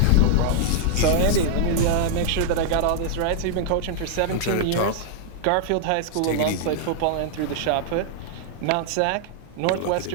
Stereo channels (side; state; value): both; different; correlation -0.01